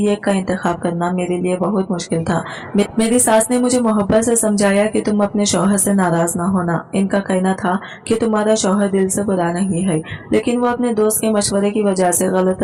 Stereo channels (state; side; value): identical; both; correlation 1.00